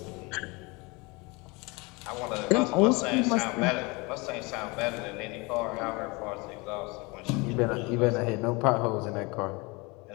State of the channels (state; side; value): quieter; right; 26.6 dB